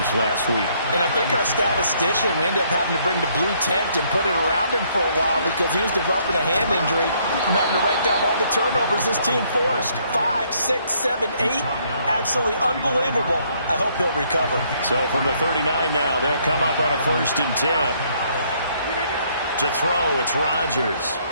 last week. And I think our statistician, we ended up having to bring the blue tent and put it around him for a while because he was developing a hand injury from having to write down all the turnovers this team forced. 5, 6, 7, 8. Absolutely unbelievable. I hope he'll recover. So from the 39 now, they'll come up on a 1st and 10. To throw, it's Rodgers.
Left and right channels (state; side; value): inverted; both; correlation -0.67